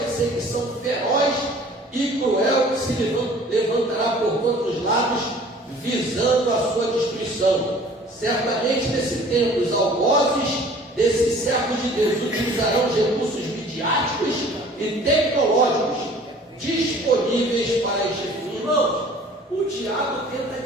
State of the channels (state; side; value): normal; both; correlation 0.50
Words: feroz e cruel que se levantará por todos os lados, visando a sua destruição. Certamente, nesse tempo, os algozes desses servos de Deus utilizarão os recursos midiáticos e tecnológicos disponíveis para este fim. Irmãos, o diabo tenta